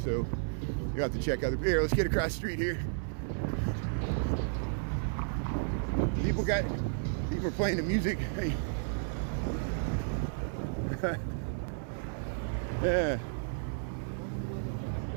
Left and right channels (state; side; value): silent; left; 56 dB below the other